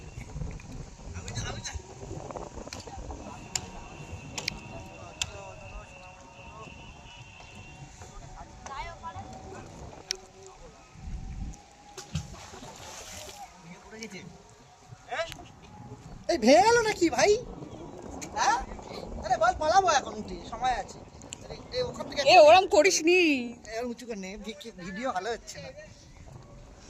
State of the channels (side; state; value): both; identical; correlation 1.00